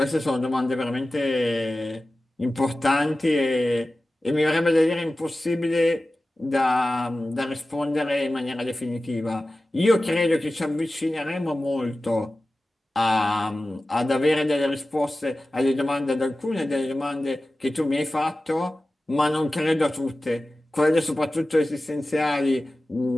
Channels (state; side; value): normal; both; correlation 0.96